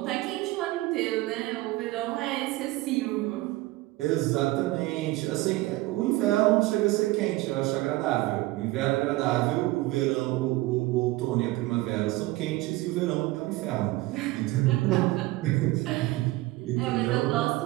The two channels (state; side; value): quieter; left; 19.3 dB